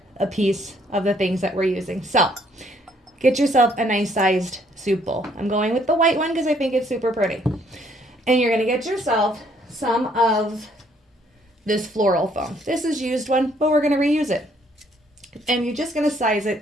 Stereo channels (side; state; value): both; normal; correlation 0.66